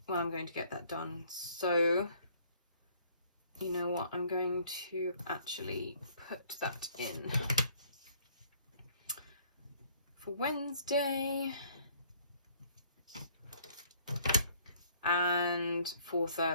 I'm going to get that done. So you know what, I'm going to actually put that in for Wednesday and for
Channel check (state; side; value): inverted; both; correlation -0.59